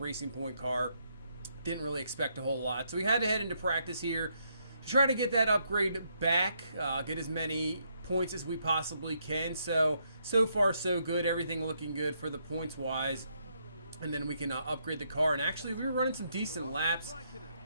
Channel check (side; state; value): both; inverted; correlation -0.75